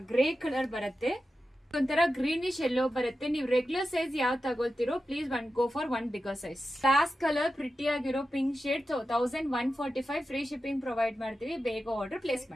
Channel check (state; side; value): normal; both; correlation 0.92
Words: Grey colour ಬರುತ್ತೆ. ಒಂಥರ ಗ್ರೀನಿಶ್ ಎಲ್ಲೋ ಬರುತ್ತೆ. ನೀವು ರೆಗ್ಯುಲರ್ ಸೈಜ್ ಯಾವ ತಗೊಳ್ತಿರೋ please go for one bigger size. Glass colour pretty ಆಗಿರೋ pink shade. 1145 free shipping provide ಮಾಡ್ತೀವಿ. ಬೇಗ ಆರ್ಡರ್ ಪ್ಲೇಸ್